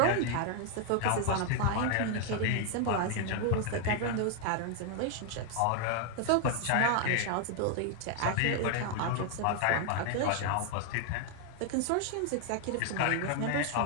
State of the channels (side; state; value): both; different; correlation 0.00